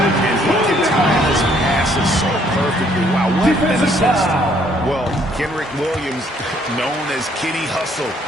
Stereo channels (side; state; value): both; normal; correlation 0.65